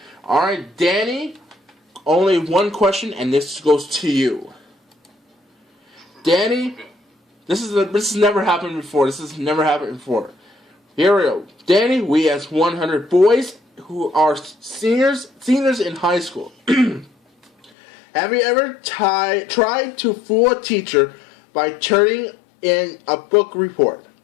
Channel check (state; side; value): drops out; right; at 17.7 s